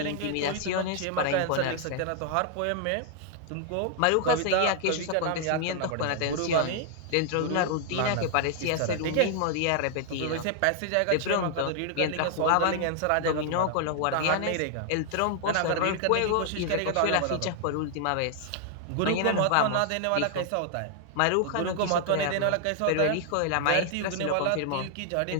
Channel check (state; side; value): different; both; correlation 0.00